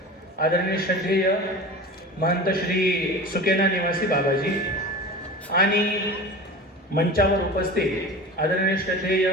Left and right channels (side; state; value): both; normal; correlation 0.33